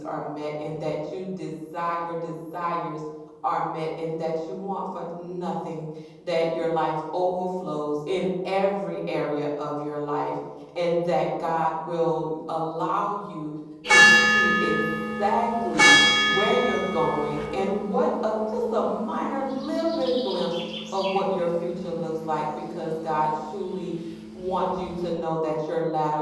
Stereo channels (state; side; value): identical; both; correlation 1.00